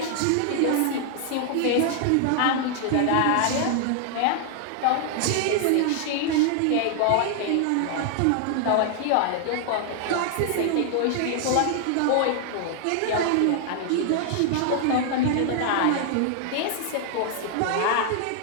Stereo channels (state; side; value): different; both; correlation 0.00